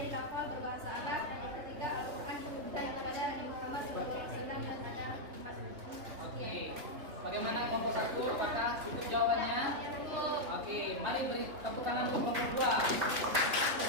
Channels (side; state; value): left; late; 3.4 ms